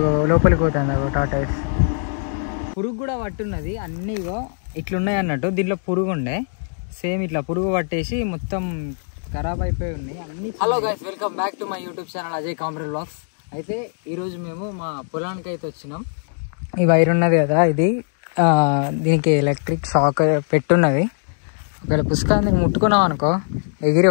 లోపలికి పోతుంది టాటాయిస్. పురుగు కూడా పట్టున్నది. అన్నీగో ఇట్లున్నాయి అన్నట్టు. దీంట్లో పురుగు ఉండే సేమ్ ఇట్లా పురుగు పట్టేసి మొత్తం ఖరాబ్ అయిపోయి ఉన్నాయి అన్ని. Hello guys, welcome back to my YouTube channel Ajay comrade vlogs. అయితే ఈరోజు మేము మా పొలానికి అయితే వచ్చినాం. ఈ వైర్ ఉన్నది కదా, ఇది దీనికి ఎలక్ట్రిక్ షాక్ పెట్టున్నది. ఒకవేళ పుస్తకాన్ని ముట్టుకున్నాం అనుకో ఎగిరి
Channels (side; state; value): right; silent; digital silence